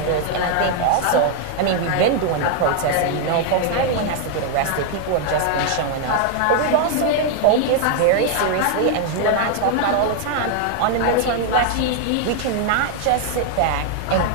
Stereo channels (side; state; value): both; different; correlation 0.00